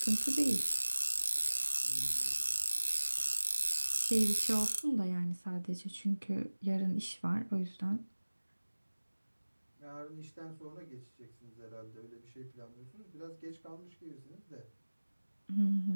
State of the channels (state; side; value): inverted; both; correlation -1.00